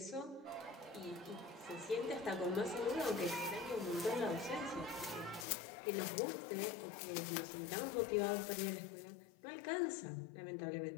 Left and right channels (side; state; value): right; drops out; at 5.5 s